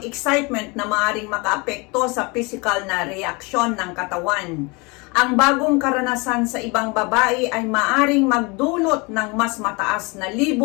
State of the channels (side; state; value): right; quieter; 27.9 dB